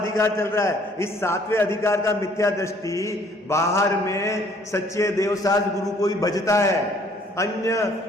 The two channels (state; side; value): normal; both; correlation 0.60